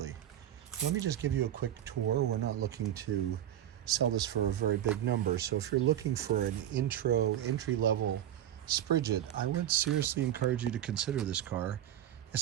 Let me just give you a quick tour. We're not looking to sell this for a very big number. So if you're looking for an entry-level Spridget, I would seriously encourage you to consider this car,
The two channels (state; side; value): quieter; left; 11.4 dB